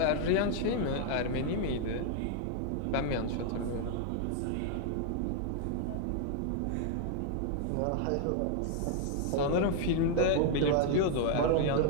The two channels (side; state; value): both; different; correlation 0.00